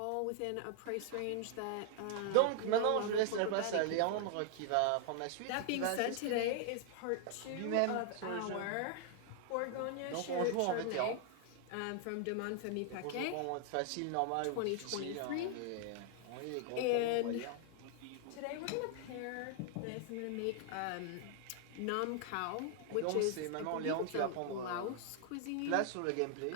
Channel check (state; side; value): different; both; correlation -0.01